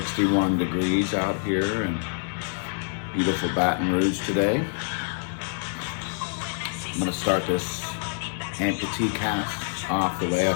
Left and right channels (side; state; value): right; silent; 61 dB below the other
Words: degrees out here in beautiful Baton Rouge today. I'm going to start this Amputee cast off the way I